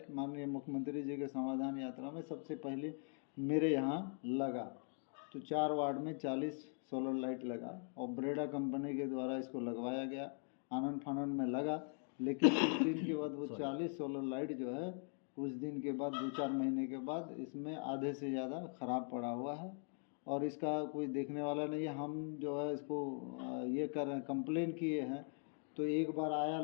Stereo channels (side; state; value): right; silent; 50 dB below the other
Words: माननीय मुख्यमंत्री जी के समाधान यात्रा में सबसे पहले मेरे यहाँ लगा। तो 4 वार्ड में 40 सोलर लाइट लगा और ब्रेडा कंपनी के द्वारा इसको लगवाया गया, आनंद फानंद में लगा। लेकिन कुछ दिन के बाद वो 40 सोलर लाइट जो है, कुछ दिन के बाद 2-4 महीने के बाद इसमें आधे से ज़्यादा ख़राब पड़ा हुआ है और इसका कोई देखने वाला नहीं है। हम जो है इसको ये कर रहे हैं, कंप्लेन किए हैं, तो एक बार आया,